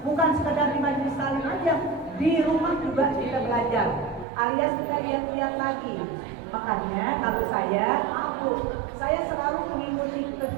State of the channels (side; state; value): left; drops out; at 4.2 s